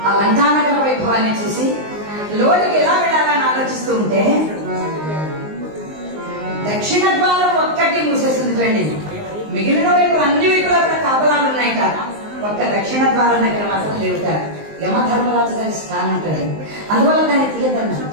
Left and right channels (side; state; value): left; late; 19 ms